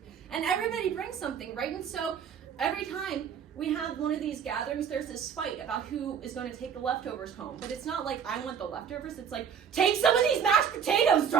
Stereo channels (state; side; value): quieter; left; 7.6 dB